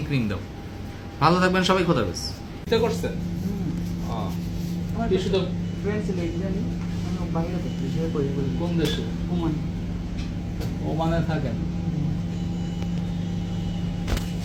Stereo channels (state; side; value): identical; both; correlation 1.00